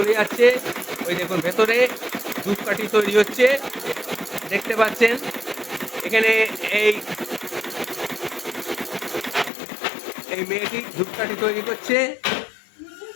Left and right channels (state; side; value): drops out; right; at 9.5 s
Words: যাচ্ছে। ওই দেখুন ভেতরে ধূপকাঠি তৈরি হচ্ছে, দেখতে পাচ্ছেন। এখানে এই এই মেয়েটি ধূপকাঠি তৈরি করছে,